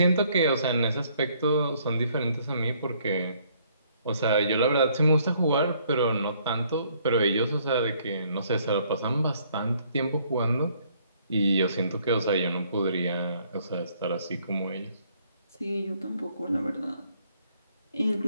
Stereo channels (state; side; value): inverted; both; correlation -0.65